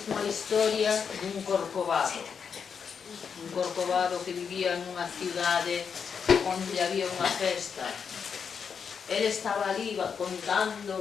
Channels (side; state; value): right; quieter; 6.5 dB